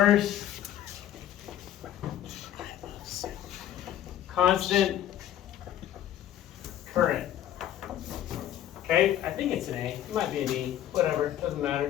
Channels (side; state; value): right; quieter; 11.8 dB